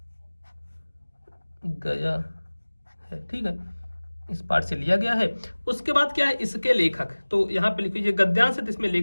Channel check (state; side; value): inverted; both; correlation -1.00